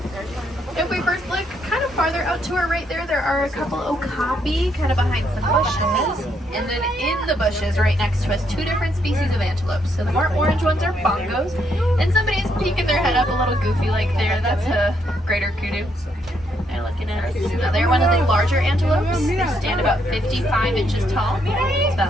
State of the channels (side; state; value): both; normal; correlation 0.74